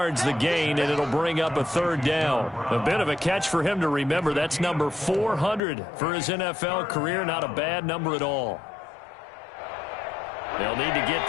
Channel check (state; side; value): drops out; right; at 5.6 s